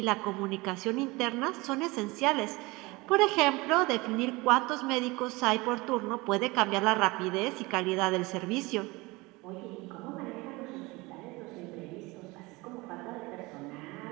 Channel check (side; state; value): left; quieter; 23.3 dB